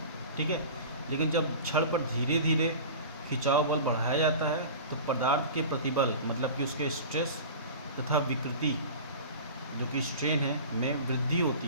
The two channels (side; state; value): both; inverted; correlation -0.36